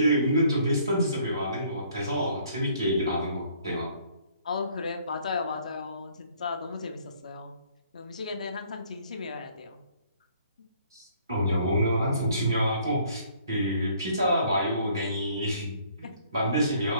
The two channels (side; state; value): both; inverted; correlation -0.61